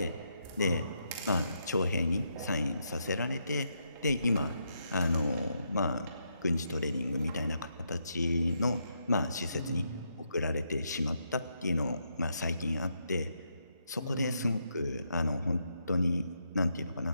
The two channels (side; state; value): both; inverted; correlation -0.80